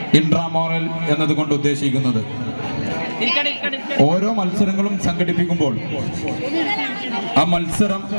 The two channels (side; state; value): both; inverted; correlation -1.00